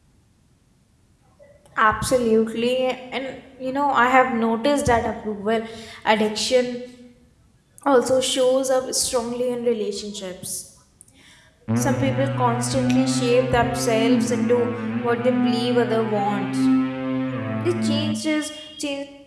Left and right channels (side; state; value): both; identical; correlation 1.00